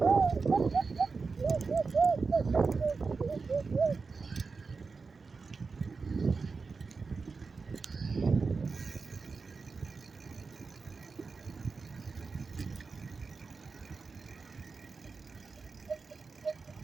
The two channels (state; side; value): quieter; left; 4.6 dB